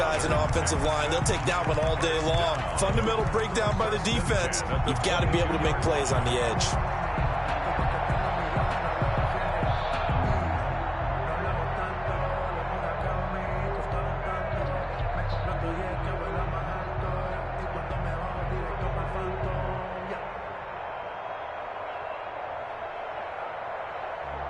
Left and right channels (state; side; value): identical; both; correlation 1.00